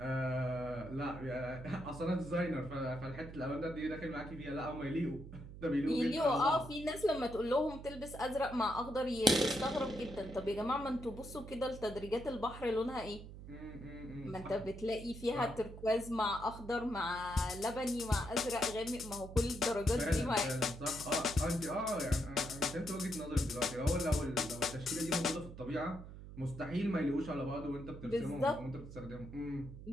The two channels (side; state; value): right; noise; hum, 13 dB below the sound